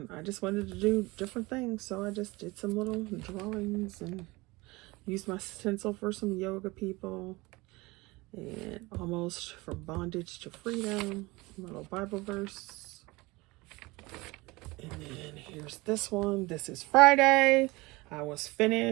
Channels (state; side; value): quieter; left; 22.8 dB